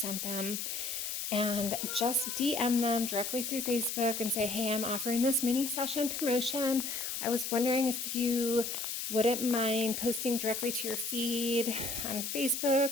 them, and just DM them directly through Facebook and say, hey, I'm offering this mini session promotion. I was wondering if you wouldn't mind posting directly to your feed on Facebook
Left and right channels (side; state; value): left; noise; hiss, 4 dB below the sound